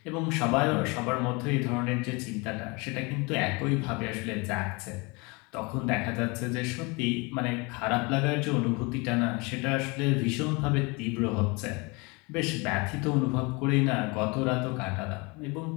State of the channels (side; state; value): right; quieter; 27.6 dB